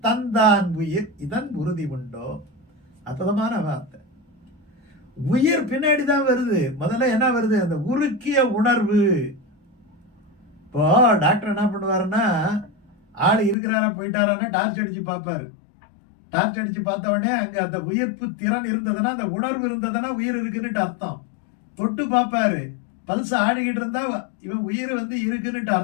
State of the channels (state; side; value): drops out; right; at 13.6 s